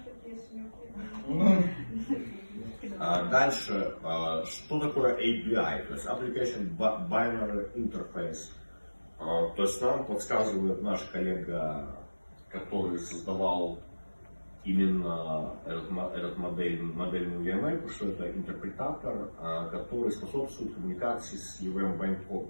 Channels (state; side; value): inverted; both; correlation -1.00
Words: Дальше, что такое API, то есть Application Binary Interface. То есть нам подсказывает наш коллега, который создавал именно этот модельную EML, что это интерпретатор, который способствует коммуникации с EVM